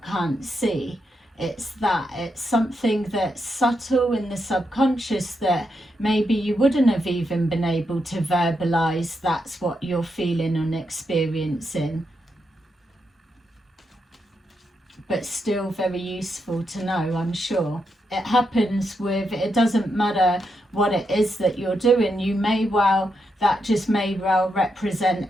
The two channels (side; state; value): both; normal; correlation 0.83